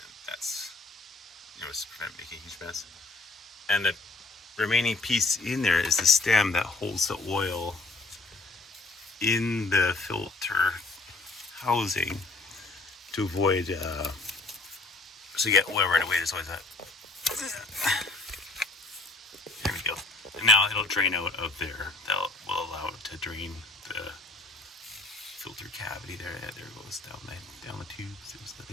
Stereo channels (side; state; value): right; quieter; 3.1 dB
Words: that's, just prevent making a huge mess. And the remaining piece in there is the stem that holds the oil in the filter housing to avoid, so you get oil right away. There's always that. There we go. And now it'll drain out of there. That will allow it to drain the filter cavity there. Yeah, there it goes down the tubes. There's the